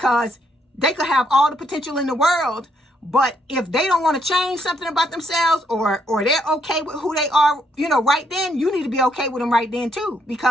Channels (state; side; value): normal; both; correlation 0.74